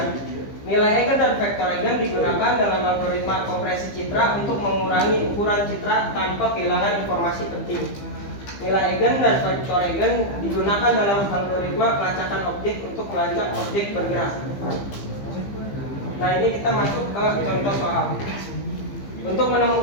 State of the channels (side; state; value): right; late; 15 ms